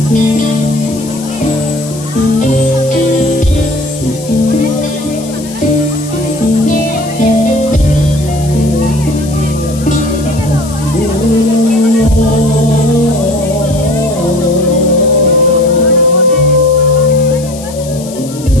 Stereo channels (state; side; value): noise; left; hiss, 16 dB below the sound